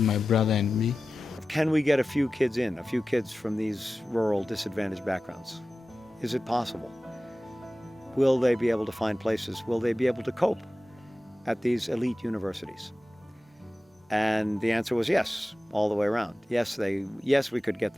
my brother and me. Can we get a few kids from these rural, disadvantaged backgrounds? Is it possible? Will they be able to find places? Will they be able to cope at these elite universities? And the answer was yes, all the way around. Yes, we could get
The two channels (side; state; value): both; normal; correlation 0.95